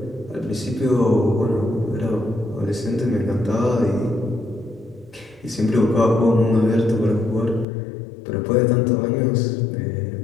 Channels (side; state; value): right; drops out; at 7.7 s